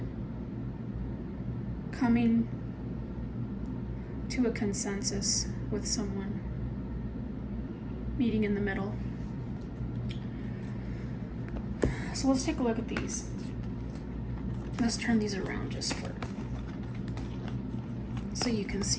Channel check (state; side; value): identical; both; correlation 1.00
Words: coming to a consensus with someone, meeting in the middle. So let's take a look at these. Let's turn these around just for so you can